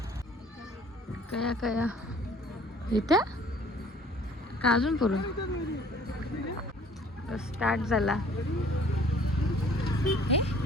कया कया इथं का अजून पुढं स्टार्ट झाला.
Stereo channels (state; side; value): normal; both; correlation 0.54